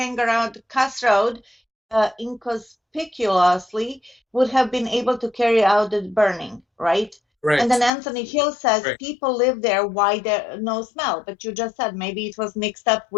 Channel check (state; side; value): drops out; right; at 7.9 s